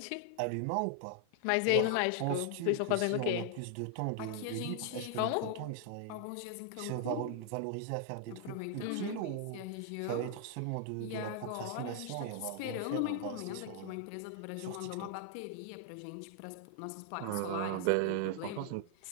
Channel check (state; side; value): different; both; correlation 0.00